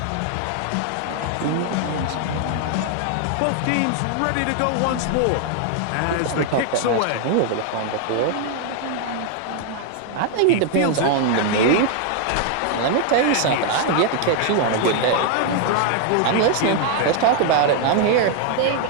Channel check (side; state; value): both; different; correlation 0.00